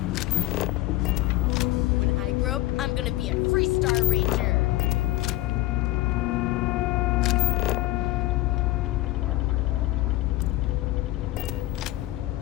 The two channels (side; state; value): right; quieter; 17.5 dB